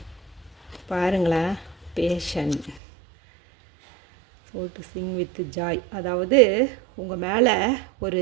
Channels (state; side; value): drops out; left; at 2.8 s